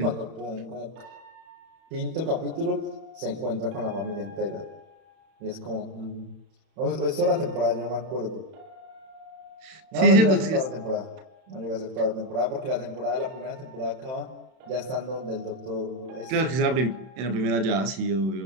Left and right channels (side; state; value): left; late; 31 ms